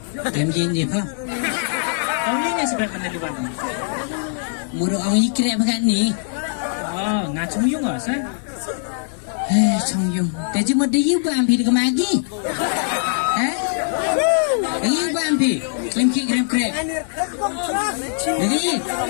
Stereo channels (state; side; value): silent; right; digital silence